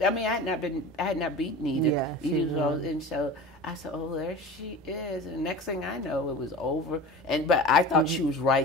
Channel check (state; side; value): normal; both; correlation 0.35